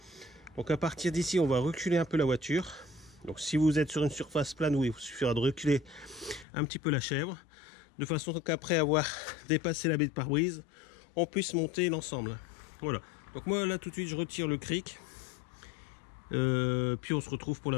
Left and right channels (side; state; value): right; drops out; at 6.5 s